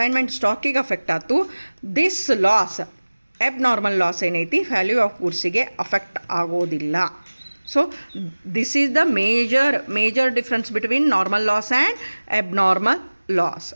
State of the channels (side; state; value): both; inverted; correlation -1.00